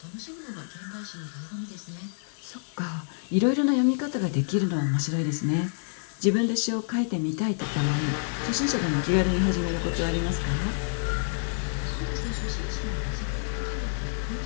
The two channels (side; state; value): right; silent; digital silence